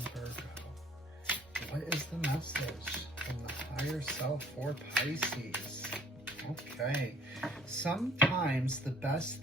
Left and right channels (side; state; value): both; normal; correlation 0.57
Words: What is the message from the higher self for Pisces? Okay. Sometimes the best